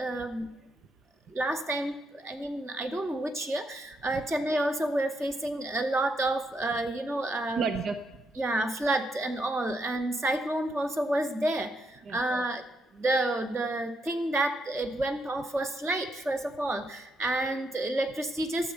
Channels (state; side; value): normal; both; correlation 0.79